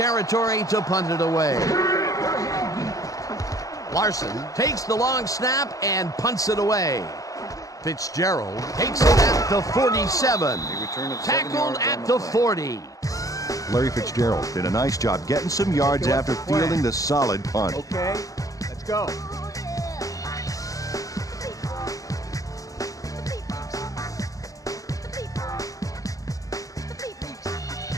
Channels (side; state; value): right; late; 0.17 ms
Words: to punt it away. Larson takes the long snap and punts it away. Fitzgerald takes it at the 47. Tackled at the 40. Larry Fitzgerald did a nice job getting some yards after fielding the solid punt. Okay, let's go.